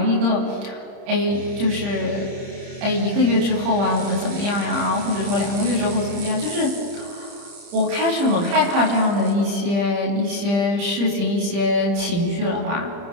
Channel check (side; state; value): left; late; 30 ms